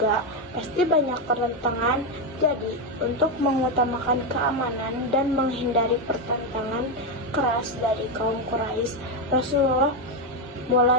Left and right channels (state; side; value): normal; both; correlation 0.07